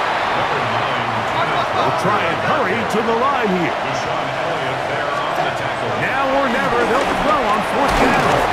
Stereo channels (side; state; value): both; identical; correlation 1.00